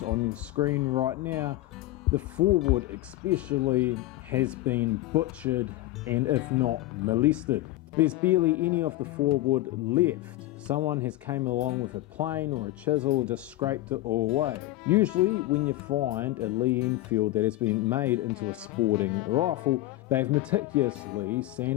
on your screen right now, the forward especially has been butchered and if not molested. There's barely any of the forward left. Someone has came along with a plane or a chisel and just scraped it all away. Usually when you find a Lee Enfield that has been made into a sporting rifle, they've meticulously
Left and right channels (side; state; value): right; quieter; 16.6 dB